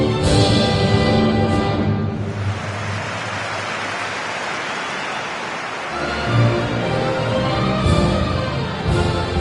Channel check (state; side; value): identical; both; correlation 1.00